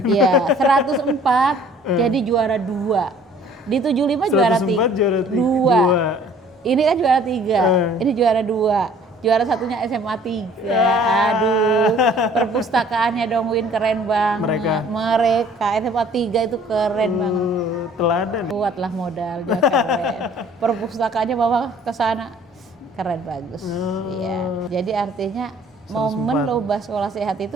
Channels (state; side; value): normal; both; correlation 0.54